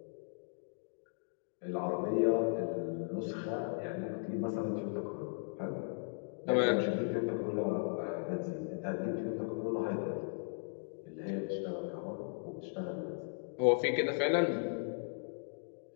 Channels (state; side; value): silent; right; digital silence